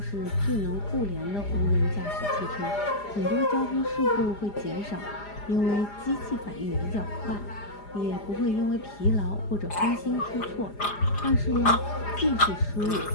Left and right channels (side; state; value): right; late; 4.9 ms